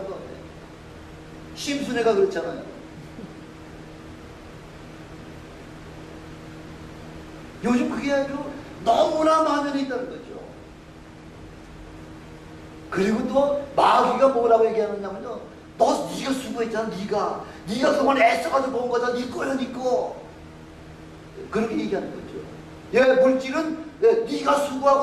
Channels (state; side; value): identical; both; correlation 1.00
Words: 심순애가 그렇잖아요. 요즘 그게 아주 너무나 만연해 있다는 거죠. 그리고 또 마귀가 뭐라고 얘기하느냐면요, 네가 수고했잖아. 네가 그동안 애써가지고 본 거잖아. 네 거야, 네 거. 그렇게 얘기하는 거죠. 예, 물질은 네가